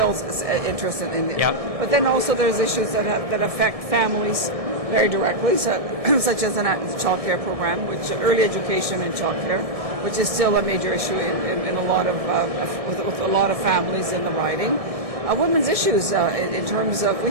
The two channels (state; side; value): late; left; 1.7 ms